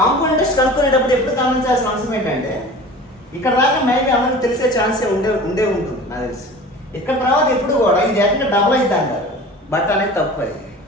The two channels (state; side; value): normal; both; correlation 0.40